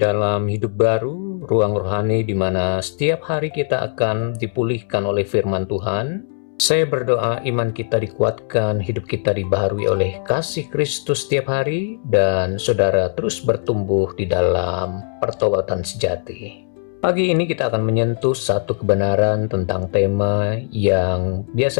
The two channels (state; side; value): silent; right; 66 dB below the other